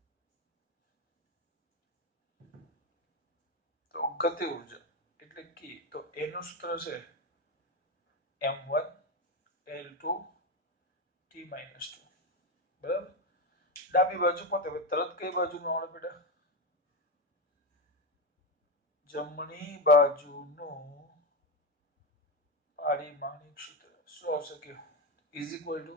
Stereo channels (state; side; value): normal; both; correlation 0.12